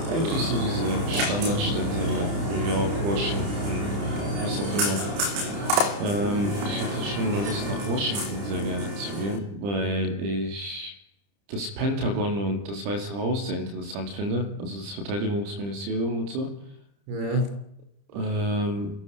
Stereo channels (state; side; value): late; left; 30 ms